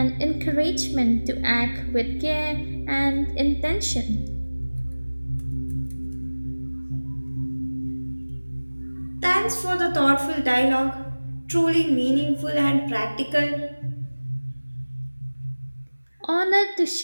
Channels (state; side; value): inverted; both; correlation -1.00